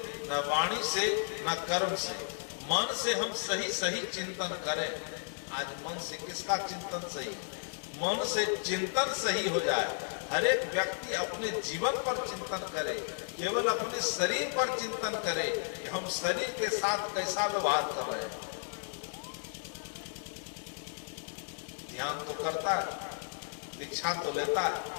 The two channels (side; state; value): right; silent; digital silence